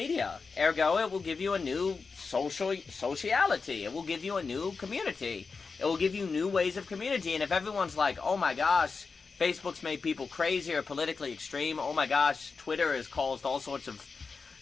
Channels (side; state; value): right; quieter; 4.7 dB